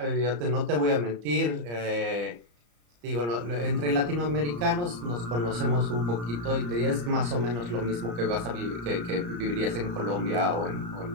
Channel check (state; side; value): late; left; 34 ms